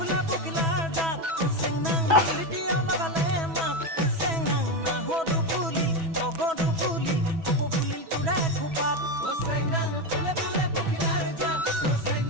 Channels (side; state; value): left; late; 6.1 ms